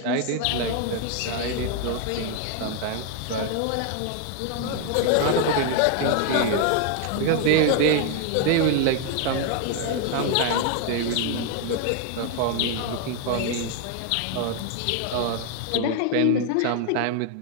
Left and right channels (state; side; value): different; both; correlation 0.01